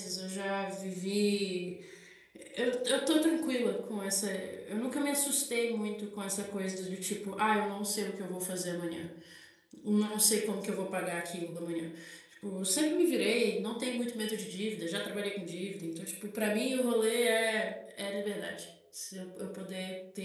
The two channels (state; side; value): identical; both; correlation 1.00